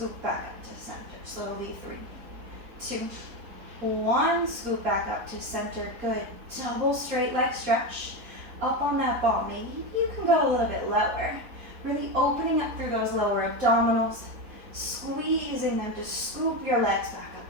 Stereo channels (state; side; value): late; left; 4.1 ms